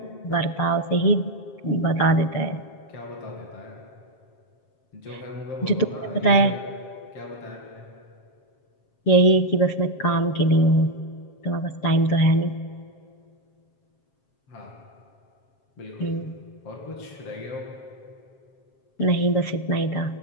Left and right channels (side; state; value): right; late; 7.4 ms